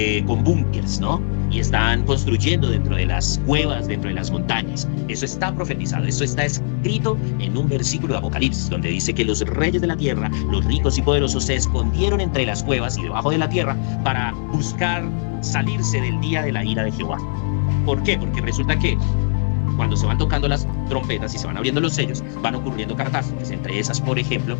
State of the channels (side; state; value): right; silent; digital silence